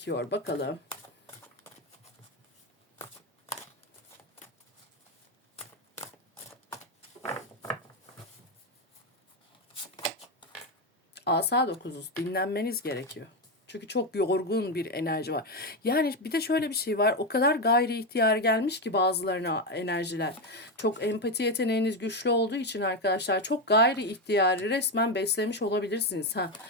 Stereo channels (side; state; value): both; normal; correlation 0.10